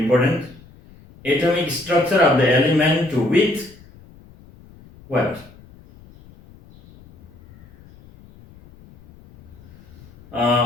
Atomic structure of the element with what?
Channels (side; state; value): left; noise; rumble, 24 dB below the sound